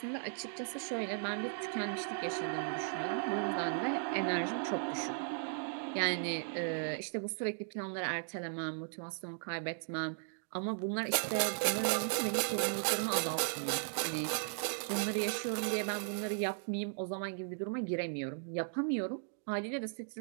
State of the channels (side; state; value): left; silent; digital silence